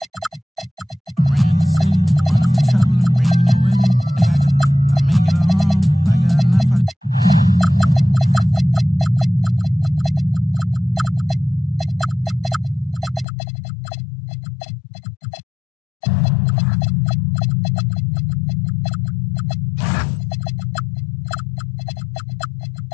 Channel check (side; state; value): right; drops out; at 13.2 s